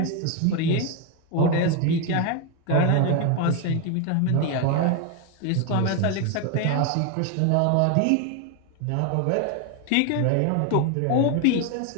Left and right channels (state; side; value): different; both; correlation 0.01